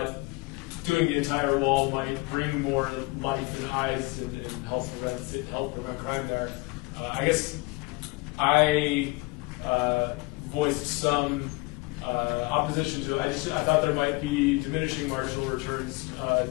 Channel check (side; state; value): right; quieter; 24.8 dB